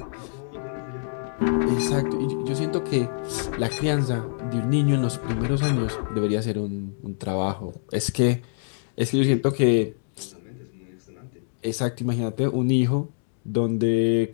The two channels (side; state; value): right; silent; digital silence